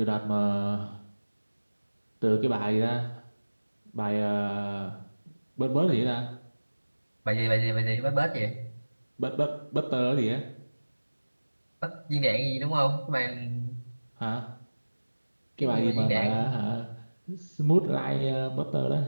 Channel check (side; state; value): both; inverted; correlation -1.00